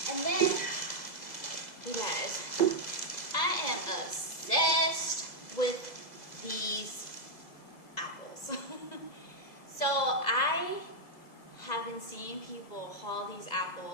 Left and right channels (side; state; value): right; late; 2.0 ms